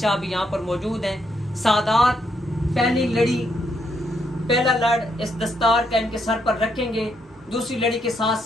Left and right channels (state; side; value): normal; both; correlation 0.77